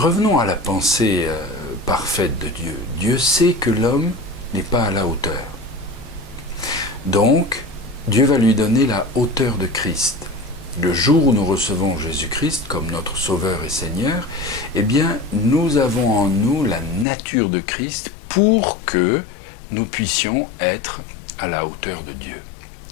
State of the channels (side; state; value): right; drops out; at 17.1 s